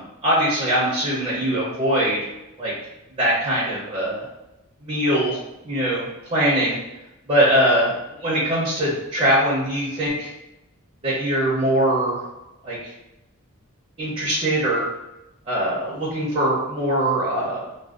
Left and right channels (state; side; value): normal; both; correlation 0.10